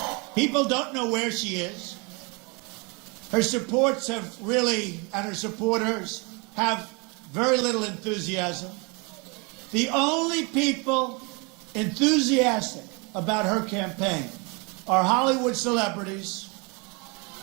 People don't know where she is. Her supports have really, and her supporters have very little enthusiasm. The only people enthusiastic about her campaign are Hollywood celebrities,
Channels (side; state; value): left; quieter; 30.3 dB